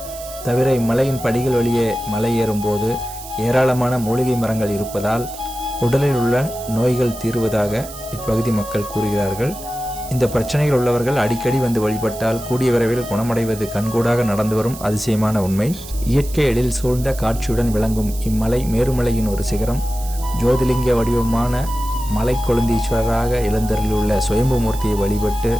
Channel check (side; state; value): right; noise; hiss, 14 dB below the sound